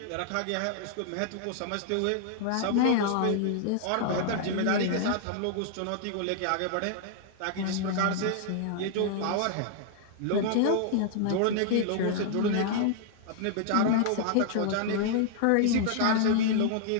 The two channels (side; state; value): both; different; correlation -0.01